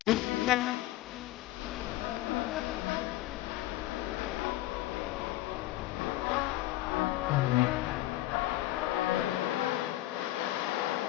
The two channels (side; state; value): right; quieter; 16.4 dB